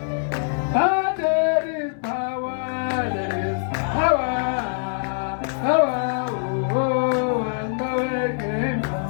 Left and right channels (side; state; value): right; silent; 63 dB below the other